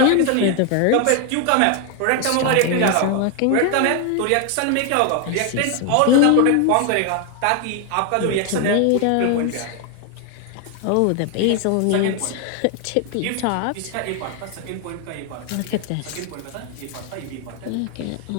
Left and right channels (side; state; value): both; different; correlation 0.01